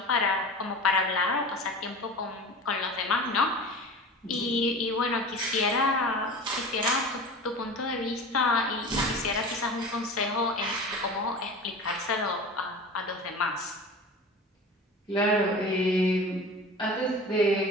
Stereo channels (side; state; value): both; normal; correlation 0.34